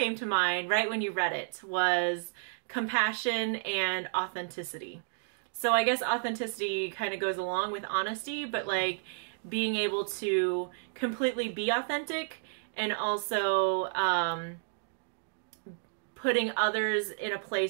to mind right when you read it, was compassion and authenticity. So I guess authenticity kind of goes along with honesty, but like being able to completely be authentic and also putting others in a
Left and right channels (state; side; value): silent; left; digital silence